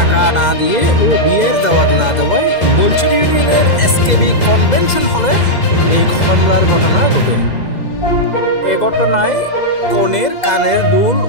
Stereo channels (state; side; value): late; right; 2.0 ms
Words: না দিয়ে ও বিয়ের দাওয়াত না দেওয়ায় বলছড়ি ইউনিয়নের এসকেবি কনভেনশন হলে এই হামলার ঘটনা ঘটে। এ ঘটনায় কনের কানের দুল